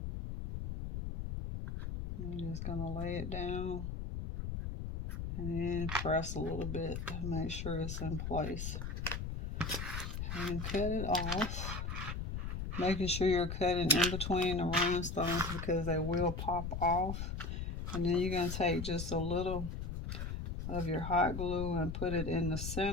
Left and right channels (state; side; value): noise; left; rumble, 4 dB below the sound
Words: I'm just going to lay it down and then press a little bit to make sure it's in place. And cut it off. Making sure you're cutting in between the rhinestones because they will pop off. And then you're going to take just a little of your hot glue and put it in the